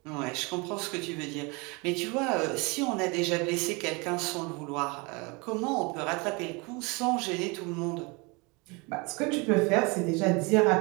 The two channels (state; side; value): quieter; left; 28.2 dB